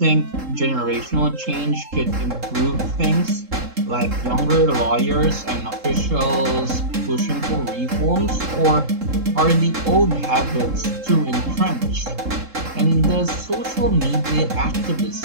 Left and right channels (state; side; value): late; left; 3.7 ms